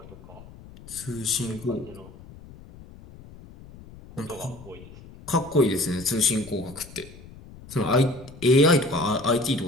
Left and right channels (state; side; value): noise; left; rumble, 19 dB below the sound